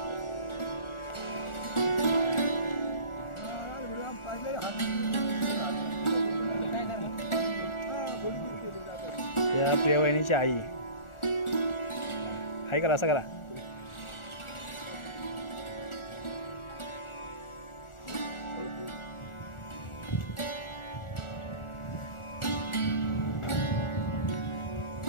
या प्रिया वहिनीची आई. हाय करा, असं करा.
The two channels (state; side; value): late; right; 1.4 ms